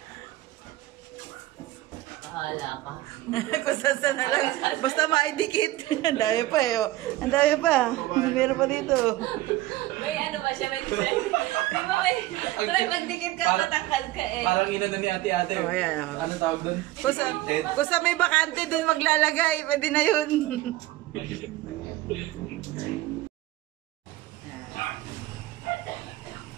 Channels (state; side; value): quieter; left; 16.8 dB